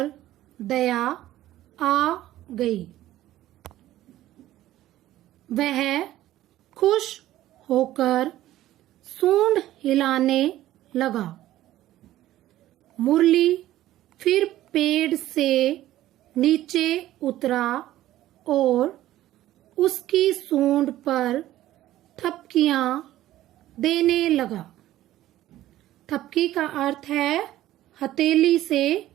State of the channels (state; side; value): quieter; left; 14.3 dB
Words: दया आ गई। वह खुश होकर सूंड हिलाने लगा। मुरली फिर पेड़ से नीचे उतरा और उसकी सूंड पर थपकियां देने लगा। थपकी का अर्थ है हथेली से